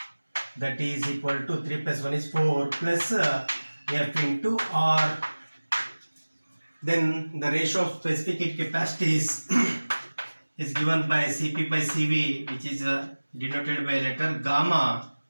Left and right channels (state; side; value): inverted; both; correlation -1.00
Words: that is equal to 3 plus 1 is 4 plus F into R. Then the ratio of specific heat capacities is given by Cp by Cv, which is denoted by letter gamma,